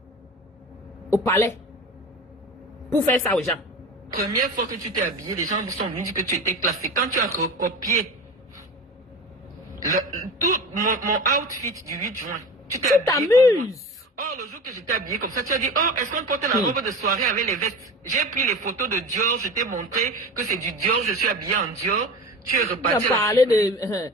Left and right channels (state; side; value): normal; both; correlation 0.32